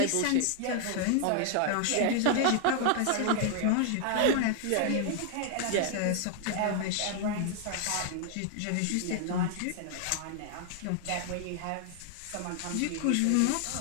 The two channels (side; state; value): both; different; correlation 0.00